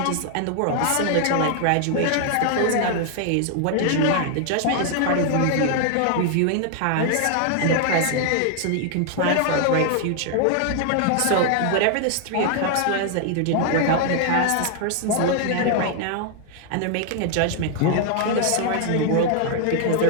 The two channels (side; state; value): both; different; correlation 0.00